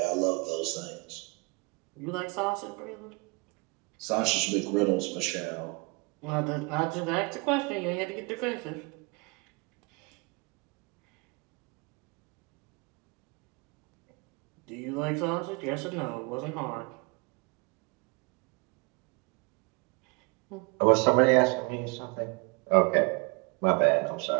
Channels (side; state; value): left; quieter; 29.8 dB